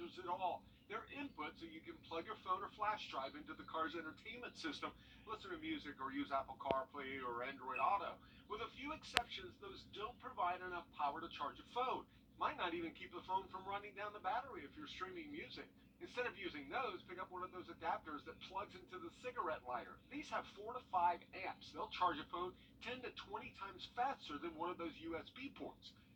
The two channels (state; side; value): identical; both; correlation 1.00